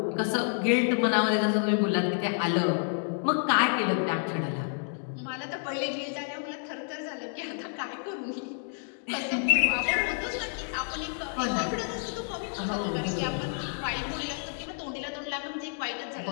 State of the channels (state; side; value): silent; right; 58 dB below the other